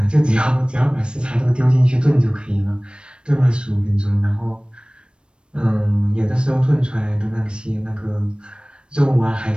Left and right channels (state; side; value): late; left; 0.056 ms